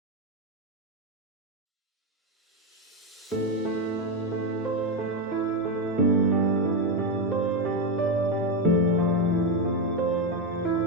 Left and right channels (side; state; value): both; normal; correlation 0.08